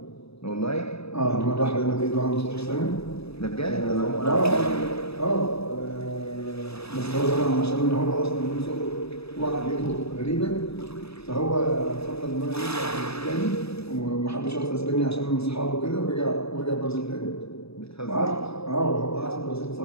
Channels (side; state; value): right; late; 0.78 ms